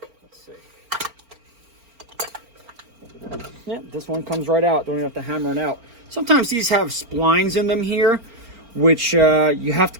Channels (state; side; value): late; left; 4.4 ms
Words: Let's see. Yeah, this one comes right out. Don't even have to hammer it out. Sometimes these have splines in them here, which you have to